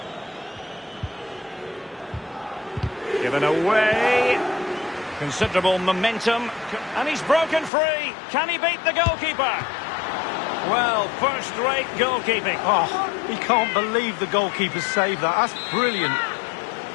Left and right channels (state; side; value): drops out; right; at 7.7 s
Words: Given away. Considerable momentum. And he's broken free. Can he beat the goalkeeper? Well, first-rate goalkeeping. Oh, he can't believe the goalkeeper saved that. That's brilliant.